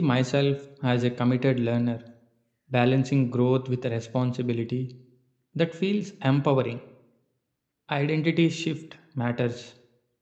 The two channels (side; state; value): both; identical; correlation 1.00